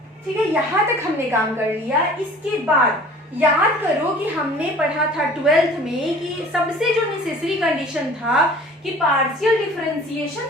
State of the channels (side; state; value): both; normal; correlation 0.47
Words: ठीक है, यहाँ तक हमने काम कर लिया। इसके बाद याद करो कि हमने पढ़ा था 12th में कि सबसे जो नेसेसरी कंडीशन था कि पार्शियल डिफरेंशिएशन